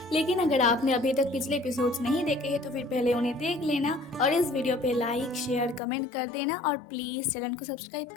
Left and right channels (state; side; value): drops out; right; at 5.8 s